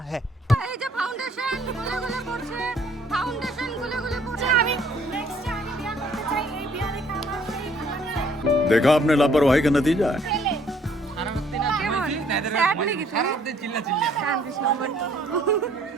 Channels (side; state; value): both; normal; correlation 0.62